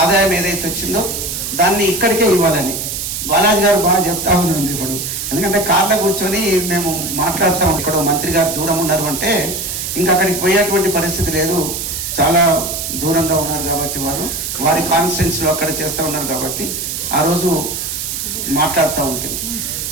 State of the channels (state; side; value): noise; right; hiss, 4 dB below the sound